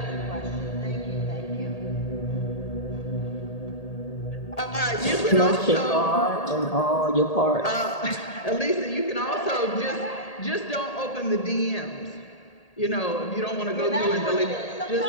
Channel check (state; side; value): late; right; 1.8 ms